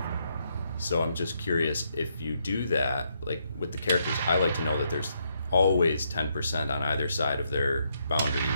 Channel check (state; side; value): inverted; both; correlation -0.76